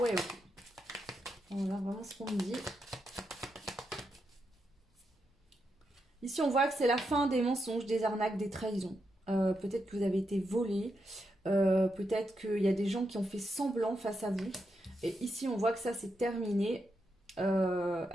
ok. » Voilà vraiment ce qu'on me dit. Ici, on voit que c'est la fin des mensonges, des arnaques, des trahisons. Peut-être que vous avez été volé. Peut-être qu'il y a des gens qui ont fait semblant face à vous. Et ici, on voit que ça, c'est terminé.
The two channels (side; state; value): both; normal; correlation 0.84